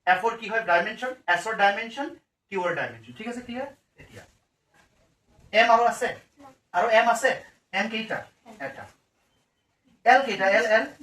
f এর কি হয় ডাইমেনশন, s এর ডাইমেনশন, q এর ডাইমেনশন। ঠিক আছে, ক্লিয়ার। এতিয়া m আৰু আছে, আৰু m আছে, m কেইটা এটা, l কেইটা l l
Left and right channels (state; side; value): identical; both; correlation 1.00